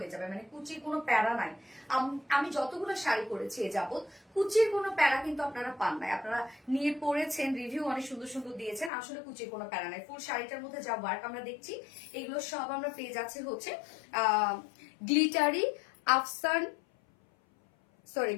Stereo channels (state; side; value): drops out; right; at 8.9 s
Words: যাবে, মানে কুচির কোনো প্যারা নাই। আমি যতগুলো শাড়ি পরেছি এ যাবত কুচির কোনো প্যারা কিন্তু আপনারা পান নাই। আপনারা নিয়ে পড়েছেন, রিভিউ অনেক সুন্দর সুন্দর দিয়েছেন, আসলে কুচির কোনো প্যারা নাই। ফুল শাড়িটার মধ্যে যা ওয়ার্ক আমরা দেখছি এগুলো সব আমরা পেয়ে যাচ্ছি হচ্ছে গ্লিটারি আফসান